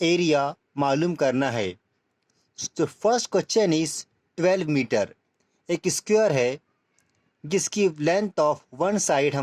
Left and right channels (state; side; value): identical; both; correlation 1.00